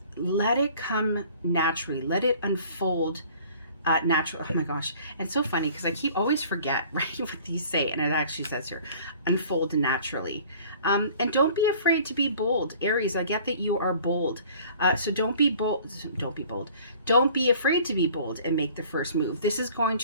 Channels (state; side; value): inverted; both; correlation -0.50